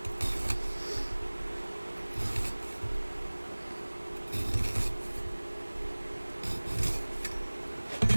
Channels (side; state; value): both; inverted; correlation -1.00